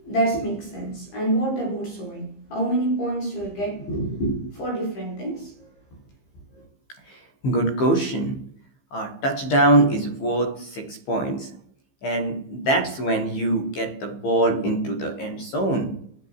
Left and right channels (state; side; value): late; right; 15 ms